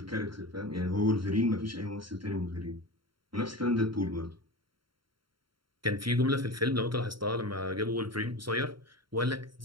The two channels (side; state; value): left; late; 0.73 ms